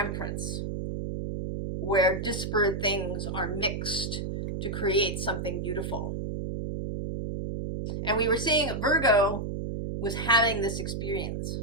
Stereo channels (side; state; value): right; noise; hum, 4 dB below the sound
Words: where disparate things are mixed to create something beautiful. And we were seeing Virgo was having this experience